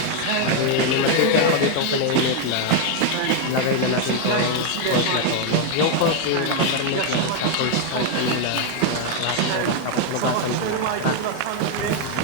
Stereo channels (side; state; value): both; different; correlation 0.01